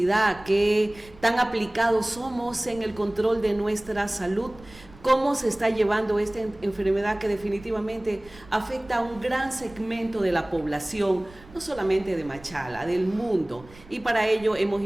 qué tan aplicados somos en el control de nuestra salud, cómo se está llevando esta enfermedad que definitivamente afecta a un gran segmento de la población, no solamente de Machala, del mundo. Y para ello hemos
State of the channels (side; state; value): right; noise; rumble, 22 dB below the sound